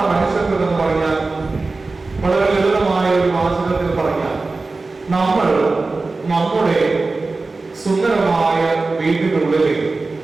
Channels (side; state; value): left; quieter; 3.6 dB